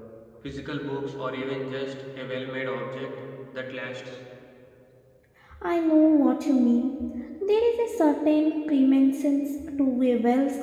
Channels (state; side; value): identical; both; correlation 1.00